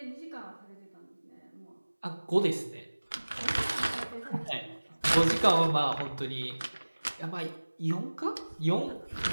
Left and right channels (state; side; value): inverted; both; correlation -1.00